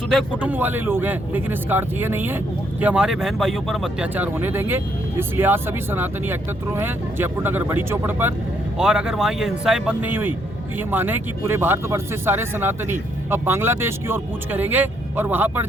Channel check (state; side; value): normal; both; correlation 0.72